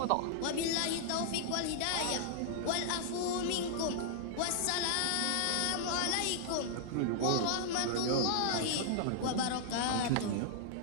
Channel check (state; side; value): different; both; correlation -0.01